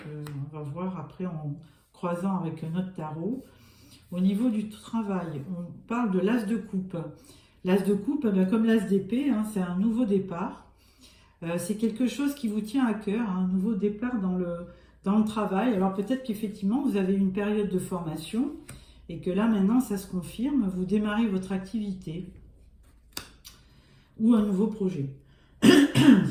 on va voir après en croisant avec notre tarot. Au niveau du travail, on parle de l'as de coupe. L'as de coupe, comme l'as d'épée, hein, c'est un nouveau départ. C'est quelque chose qui vous tient à cœur, hein, un nouveau départ dans le travail. Alors peut-être qu'effectivement vous avez une période de formation et que là maintenant ça se confirme, vous démarrez votre activité ou un nouveau projet.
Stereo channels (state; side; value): identical; both; correlation 1.00